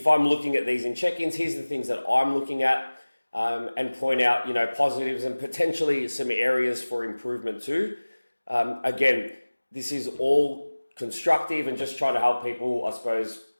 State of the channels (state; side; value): inverted; both; correlation -1.00